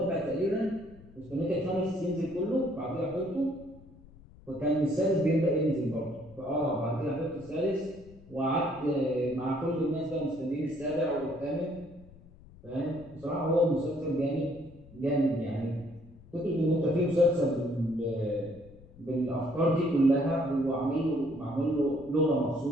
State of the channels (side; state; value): left; noise; rumble, 22 dB below the sound